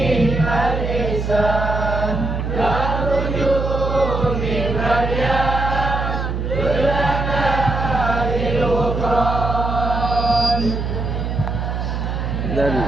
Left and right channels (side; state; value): right; noise; hum, 2 dB below the sound